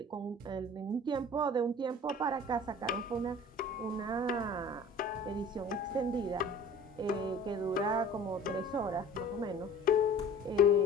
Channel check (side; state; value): both; normal; correlation 0.44